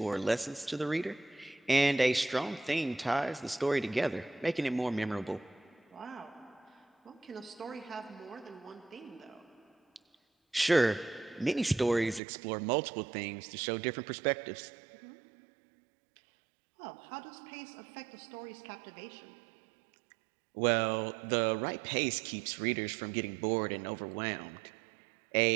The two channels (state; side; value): drops out; left; at 12.2 s